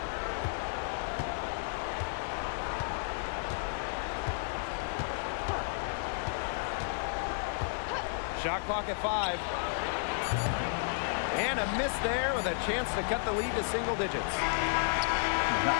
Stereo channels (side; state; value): right; silent; 56 dB below the other